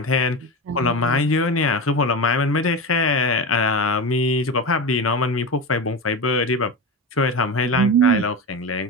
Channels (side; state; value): both; normal; correlation 0.22